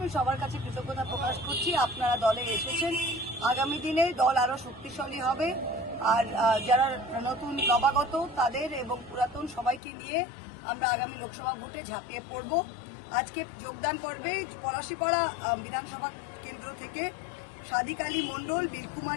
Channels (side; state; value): right; drops out; at 9.8 s